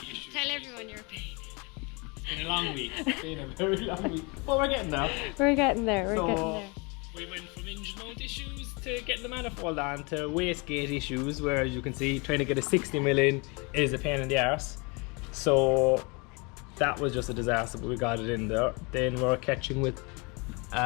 everyone your pain. It's been a long week. It's been a very long week. But we're getting there. We're getting there. We went from engine mount issues to getting the manifold on to wastegate issues, where as you can see, trying to get a 60mm in is a pain in the arse. So that was just a disaster, but we got it in there. Then we're catching with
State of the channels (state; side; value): quieter; right; 29.4 dB